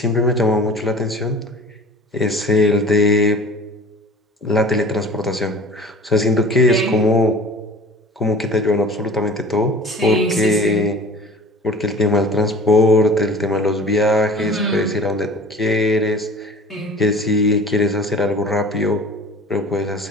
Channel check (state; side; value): normal; both; correlation 0.43